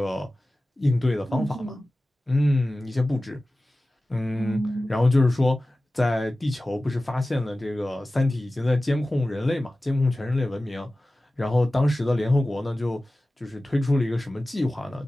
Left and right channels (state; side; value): normal; both; correlation 0.96